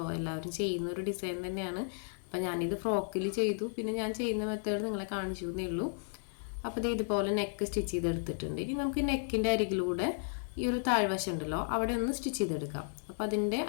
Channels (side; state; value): right; silent; digital silence